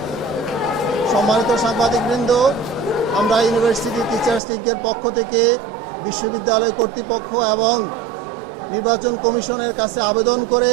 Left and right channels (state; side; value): drops out; left; at 4.4 s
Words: সম্মানিত সাংবাদিকবৃন্দ, আমরা ইউনিভার্সিটি টিচার্স লীগের পক্ষ থেকে বিশ্ববিদ্যালয় কর্তৃপক্ষ এবং নির্বাচন কমিশনের কাছে আবেদন করে